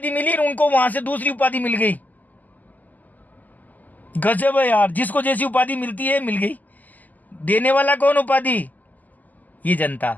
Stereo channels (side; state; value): right; late; 0.082 ms